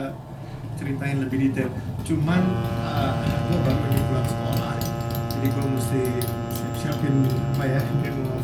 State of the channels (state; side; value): identical; both; correlation 1.00